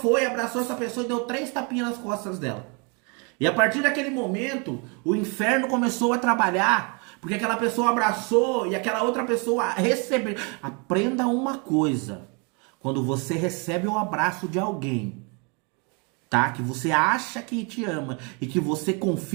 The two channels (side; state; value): left; quieter; 33.4 dB